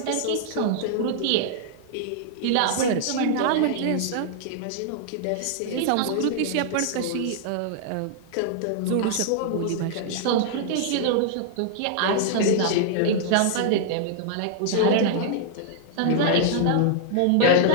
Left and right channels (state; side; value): different; both; correlation -0.01